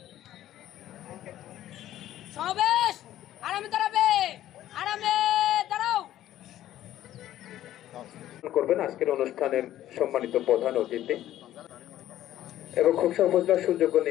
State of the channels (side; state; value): right; quieter; 13.0 dB